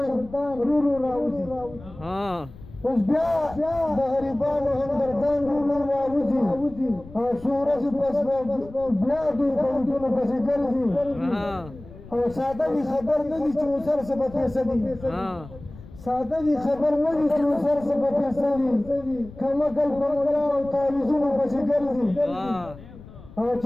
رورو راوځي اوس بیا د غریبانو همدردان رورو راوځي او څو ورځې پس بیا دوی په وټونو پسې ګرځي او ساده وي خبر نه دي چې اوسر څه به پیسه دي ساده وي خبر نه دي چې اوسر څه به پیسه دي کمکل په ملا او تعویذونو پسې ګرځي او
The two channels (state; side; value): noise; left; rumble, 18 dB below the sound